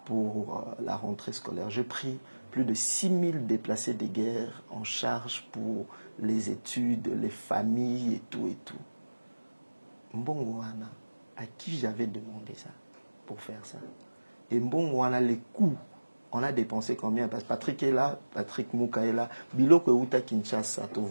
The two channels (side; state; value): both; inverted; correlation -1.00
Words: pour la rentrée scolaire. J'ai pris plus de 6 000 déplacés de guerre en charge pour les études, les familles et tout et tout. Mbongoana, à qui j'avais demandé ça pour faire ça? Et Mbongoana, les coûts, on a dépensé combien? Parce que Patrick est là, Patrick Mouka est là. Biloko Outa Kinshasa, tu